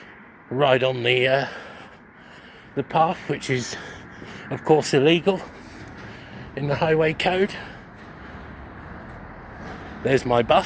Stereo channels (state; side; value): identical; both; correlation 1.00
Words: right on the path, which is of course illegal in the highway code. There's my